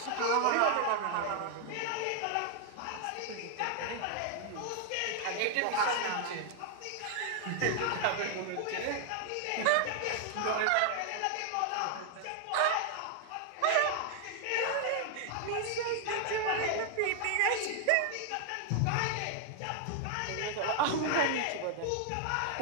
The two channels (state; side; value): different; both; correlation 0.00